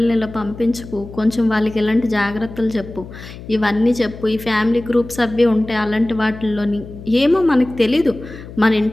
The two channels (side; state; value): left; noise; hum, 14 dB below the sound